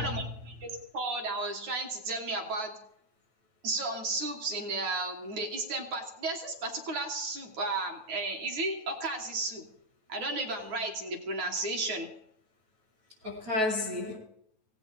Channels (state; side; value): late; left; 9.2 ms